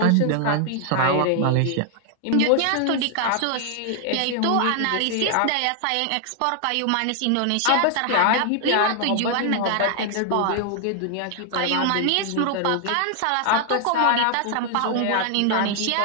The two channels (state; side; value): different; both; correlation 0.00